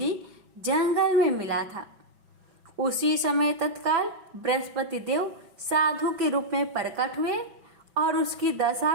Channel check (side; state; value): left; late; 6.0 ms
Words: जंगल में मिला था। उसी समय तत्काल बृहस्पति देव साधु के रूप में प्रकट हुए और उसकी दशा